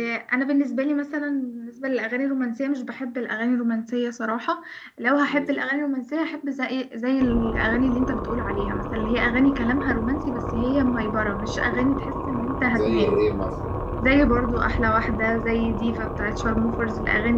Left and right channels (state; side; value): identical; both; correlation 1.00